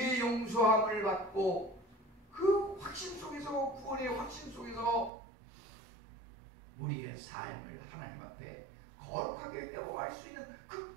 용서함을 받고 그 확신 속에서 구원의 확신 속에서 우리의 삶을 하나님 앞에 거룩하게 회복할 수 있는 그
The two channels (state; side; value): drops out; left; at 5.1 s